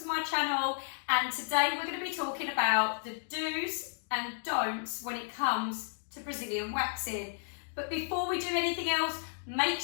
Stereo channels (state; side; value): silent; right; digital silence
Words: my channel, and today we're going to be talking about the do's and don'ts when it comes to Brazilian waxing. But before we do anything else, make